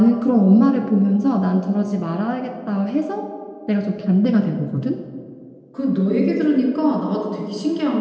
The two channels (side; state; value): both; identical; correlation 1.00